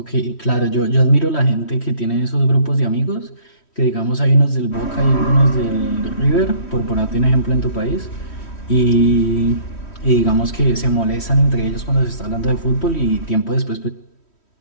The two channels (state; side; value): late; right; 3.1 ms